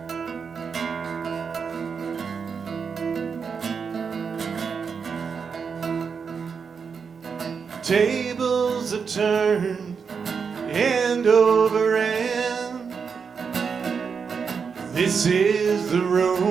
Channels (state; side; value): quieter; left; 5.9 dB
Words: Tables have turned end over end. This is the